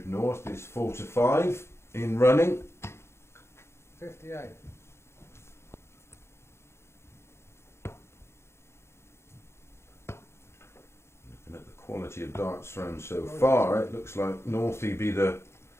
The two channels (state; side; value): late; right; 0.13 ms